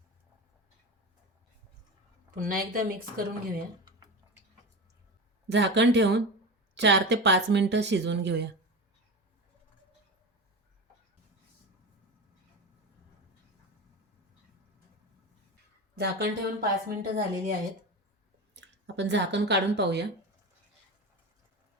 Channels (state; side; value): normal; both; correlation 0.25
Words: पुन्हा एकदा मिक्स करून घेऊया. झाकण ठेवून 4 ते 5 मिनिटं शिजवून घेऊया. झाकण ठेवून 5 मिनिटं झालेली आहेत. आपण झाकण काढून पाहूया.